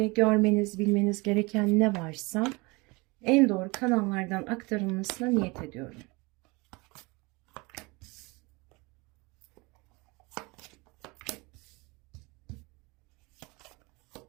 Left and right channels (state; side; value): quieter; left; 25.8 dB